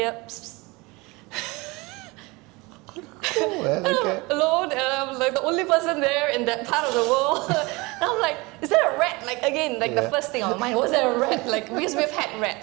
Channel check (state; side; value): quieter; left; 24.6 dB